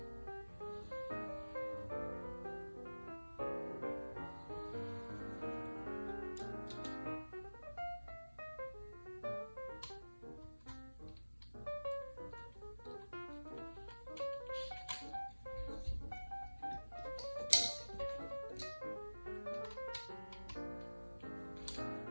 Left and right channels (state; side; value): inverted; both; correlation -1.00